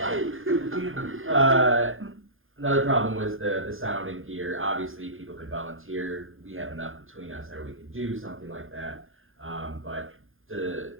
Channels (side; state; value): left; late; 0.59 ms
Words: Another problem was the sound and gear. Obviously, people could volunteer. We have enough between us that we could do something like that. But